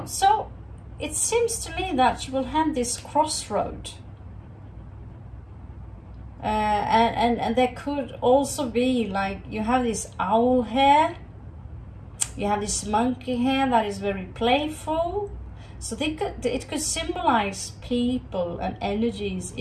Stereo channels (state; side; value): identical; both; correlation 1.00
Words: So it seems to me that you will have this crossroad. And there could also be, like, you have this owl hair, you have this monkey hair that is very playful. So it could symbolize people and energies